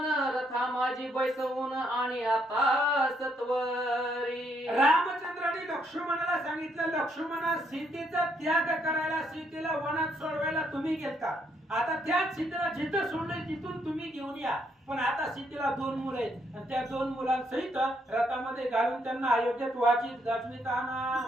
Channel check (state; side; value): normal; both; correlation 0.73